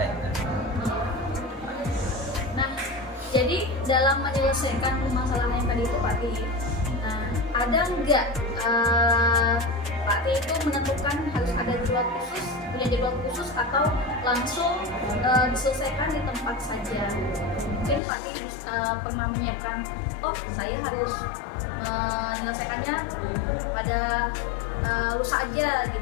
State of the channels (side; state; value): right; drops out; at 18.0 s